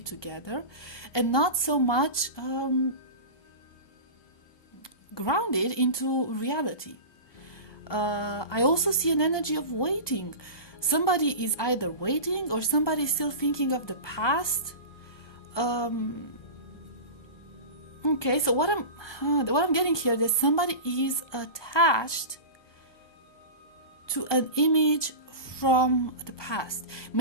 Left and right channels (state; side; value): late; right; 1.2 ms